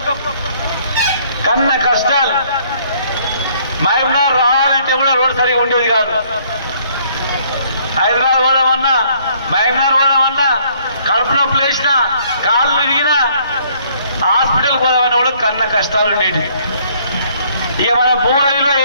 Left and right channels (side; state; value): both; inverted; correlation -0.63